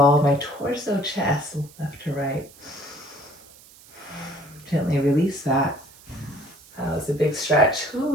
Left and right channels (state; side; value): noise; right; hiss, 23 dB below the sound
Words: my torso, chest, left to right. Gently release that. That was a big stretch.